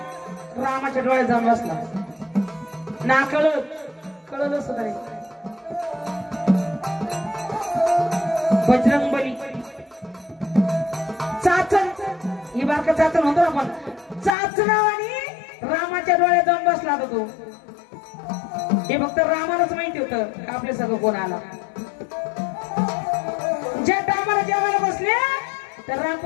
रामाच्या डोळ्यात जाऊन बसला. ना कळलं सुद्धा नाही. बजरंग बली चाचण ही बारका चाचण होतो आपण. चाचणावानी रामाच्या डोळ्यात जाऊन बसला होता तो. हे फक्त रामालाच माहिती होतं आपले सगळं कोण आला. ज्या टायमाला जेवायला बसले तर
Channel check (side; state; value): right; drops out; at 14.3 s